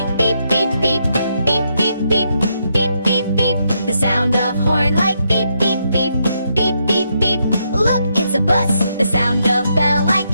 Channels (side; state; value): both; inverted; correlation -0.79